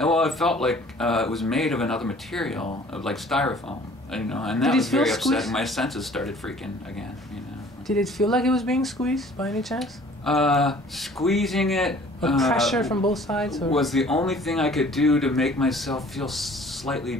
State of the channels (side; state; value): both; normal; correlation 0.52